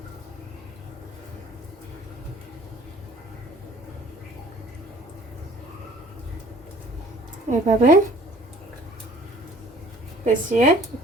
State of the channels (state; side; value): normal; both; correlation 0.52